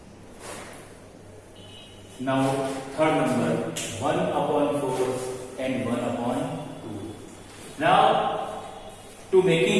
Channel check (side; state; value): both; identical; correlation 1.00